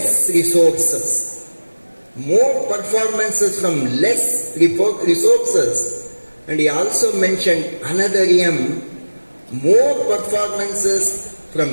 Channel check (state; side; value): inverted; both; correlation -1.00